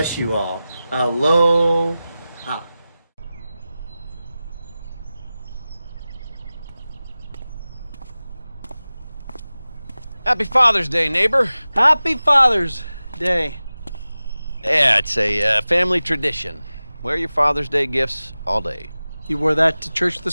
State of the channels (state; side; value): inverted; both; correlation -0.96